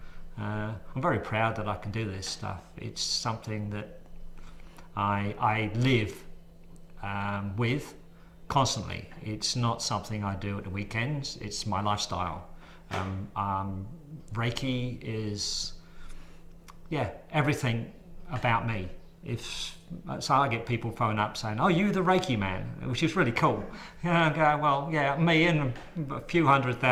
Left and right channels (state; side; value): identical; both; correlation 1.00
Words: I'm very proud that I can do this stuff. It's something that I live with constantly. It's not something I do at the weekends, it's my lifestyle. Reiki is, everything about me. So I get people phone up saying, "Oh, you the Reiki man," which is really cool. I go, well, yeah, me and a few